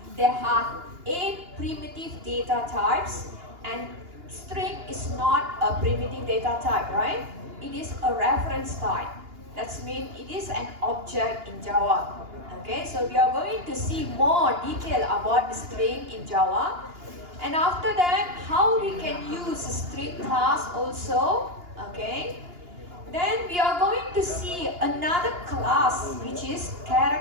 there are 8 primitive data types, and string is not a primitive data type, right? It is a reference type. That means it is an object in Java. Okay, so we are going to see more detail about the string in Java. And after that, how we can use string class also, okay? Then we are going to see another class, which is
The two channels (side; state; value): left; late; 2.8 ms